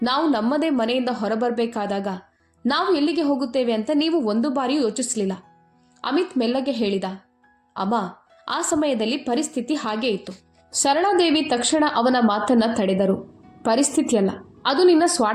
ನಾವು ನಮ್ಮದೇ ಮನೆಯಿಂದ ಹೊರಬರಬೇಕಾದಾಗ ನಾವು ಎಲ್ಲಿಗೆ ಹೋಗುತ್ತೇವೆ ಅಂತ ನೀವು ಒಂದು ಬಾರಿಯೂ ಯೋಚಿಸಲಿಲ್ಲ. ಅಮಿತ್ ಮೆಲ್ಲಗೆ ಹೇಳಿದ, ಅಮ್ಮ, ಆ ಸಮಯದಲ್ಲಿ ಪರಿಸ್ಥಿತಿ ಹಾಗೇ ಇತ್ತು. ಸರಳಾದೇವಿ ತಕ್ಷಣ ಅವನ ಮಾತನ್ನ ತಡೆದರು. ಪರಿಸ್ಥಿತಿಯಲ್ಲ, ಅದು ನಿನ್ನ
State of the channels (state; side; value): identical; both; correlation 1.00